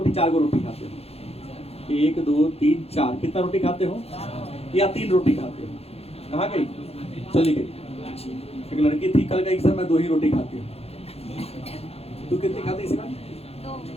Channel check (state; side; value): late; right; 0.29 ms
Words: 4 गो रोटी खाते हो। 1 2 3 4। कितना रोटी खाते हो? या 3 रोटी खाते हो? कहाँ गई? चली गई। एक लड़की थी, कल गई सर मैं 2 ही रोटी खाती हूँ। तू कितनी खाती इसी बार?